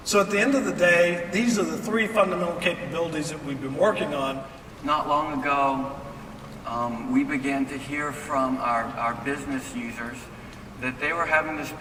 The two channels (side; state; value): both; identical; correlation 1.00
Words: So at the end of the day, these are the three fundamental capabilities that we've been working on. Not long ago, we began to hear from our business users that they were having to